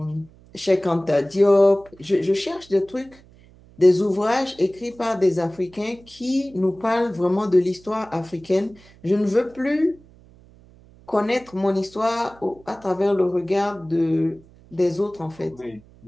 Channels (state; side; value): noise; right; hum, 25 dB below the sound